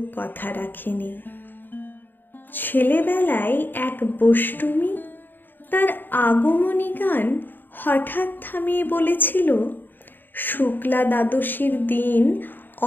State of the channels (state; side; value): late; right; 0.092 ms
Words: কথা রাখেনি। ছেলেবেলায় এক বষ্টমী তার আগমনী গান হঠাৎ থামিয়ে বলেছিল, শুক্লা দ্বাদশীর দিন